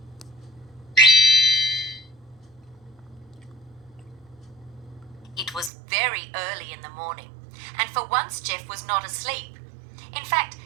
It was very early in the morning, and for once Jeff was not asleep. In fact,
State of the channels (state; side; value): drops out; left; at 5.7 s